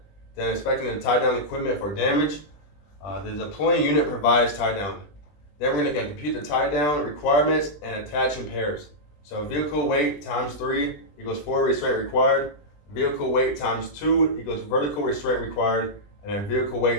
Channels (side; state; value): right; late; 20 ms